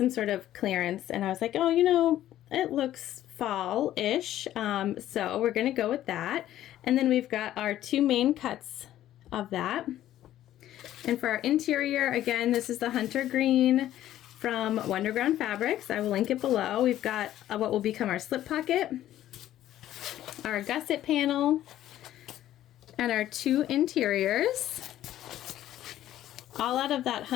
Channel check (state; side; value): quieter; right; 12.9 dB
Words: sort of clearance, and I was like, oh, you know, it looks fall-ish. So we're gonna go with that. And then we've got our 2 main cuts of that. And for our interior, again, this is the hunter green from Wonderground Fabrics. I will link it below. We've got what will become our slip pocket, our gusset panel, and our 2 interiors, all out of that